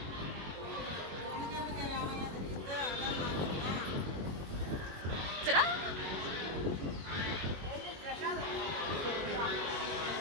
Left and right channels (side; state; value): left; late; 22 ms